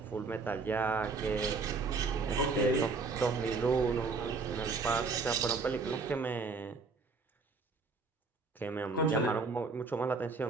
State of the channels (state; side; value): quieter; left; 4.2 dB